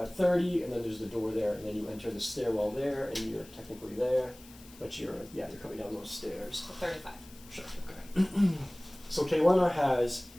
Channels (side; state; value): left; noise; hiss, 21 dB below the sound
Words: 30, and then there's the door there, and then you enter the stairwell there, and you're technically there, but you're coming down those stairs. So 35. Sure, okay. So Kaylana has